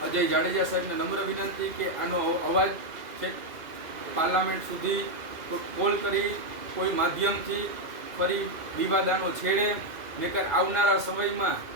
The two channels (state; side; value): late; left; 2.5 ms